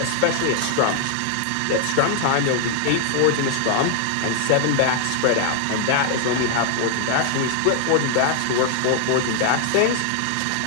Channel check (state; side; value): different; both; correlation 0.00